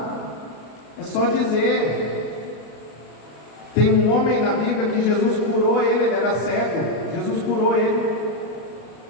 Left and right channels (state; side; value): late; right; 32 ms